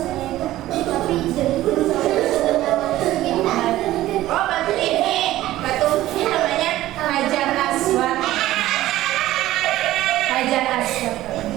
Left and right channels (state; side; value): quieter; left; 15.2 dB